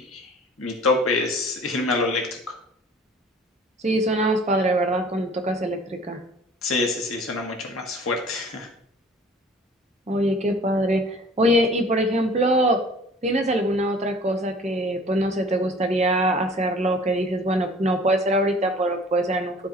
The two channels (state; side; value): normal; both; correlation 0.49